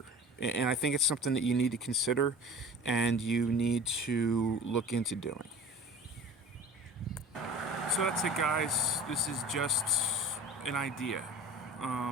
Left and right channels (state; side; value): normal; both; correlation 0.40